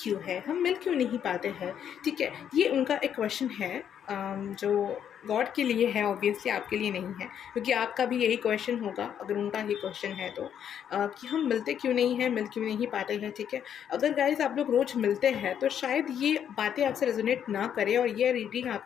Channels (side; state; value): right; quieter; 9.0 dB